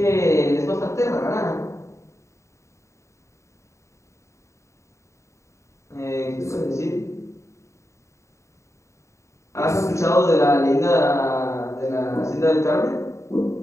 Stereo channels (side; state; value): right; late; 0.14 ms